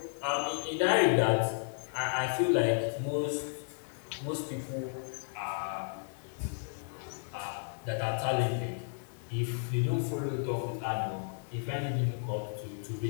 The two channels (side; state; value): right; silent; 56 dB below the other